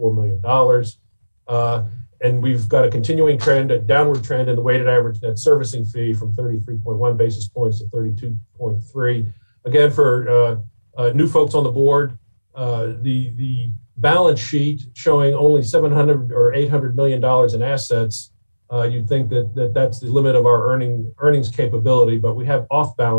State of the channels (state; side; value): inverted; both; correlation -1.00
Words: million. And we've got a continuing trend, a downward trend in the weighted average net servicing fee from 33.1 basis points to 32.3. Again, for new folks on the board, the balance sheet showing only $700 or $800 million in assets, you'd think that that's the limit of our earnings capability, but we have off